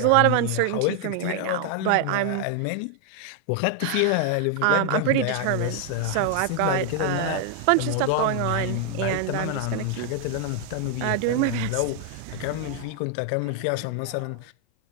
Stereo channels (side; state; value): both; different; correlation 0.00